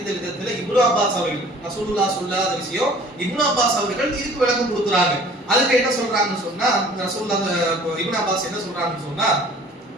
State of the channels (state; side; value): normal; both; correlation 0.50